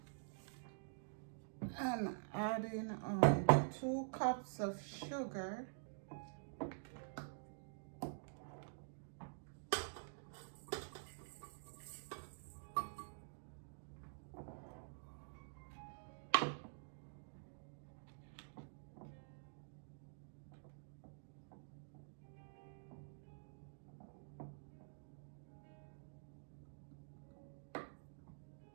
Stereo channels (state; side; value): silent; left; digital silence